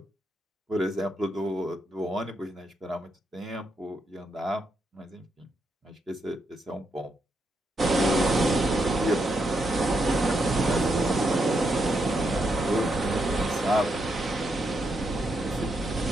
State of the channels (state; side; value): normal; both; correlation 0.81